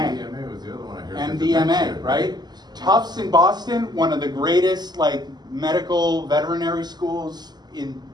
was the other one I heard. MDMA, right? Tufts in Boston, one of the greatest like medical veterinary schools in,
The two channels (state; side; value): late; left; 0.20 ms